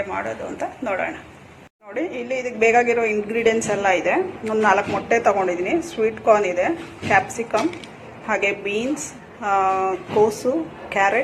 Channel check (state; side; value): identical; both; correlation 1.00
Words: ಮಾಡೋದು ಅಂತ ನೋಡೋಣ. ನೋಡಿ, ಇಲ್ಲಿ ಇದಕ್ಕೆ ಬೇಕಾಗಿರೋ ಇಂಗ್ರೀಡಿಯೆಂಟ್ಸ್ ಎಲ್ಲ ಇದೆ. ಒಂದು 4 ಮೊಟ್ಟೆ ತೊಗೊಂಡಿದ್ದೀನಿ, ಸ್ವೀಟ್ ಕಾರ್ನ್ ಇದೆ, ಕ್ಯಾಪ್ಸಿಕಮ್, ಹಾಗೆ ಬೀನ್ಸ್, ಕೋಸು,